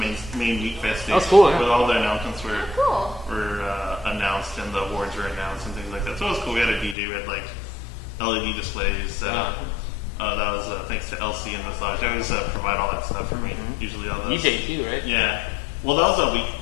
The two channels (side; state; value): right; drops out; at 7.0 s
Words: Wekfest stage. That's cool, yeah. With all the announcements Cool. were announced and the awards were announced and things like that. So it was cool. We had a DJ. We had like LED displays set up. That was thanks to LC and Massage. They always provide all that stuff for me. Usually all those. DJ too, right? Yeah. Well, that was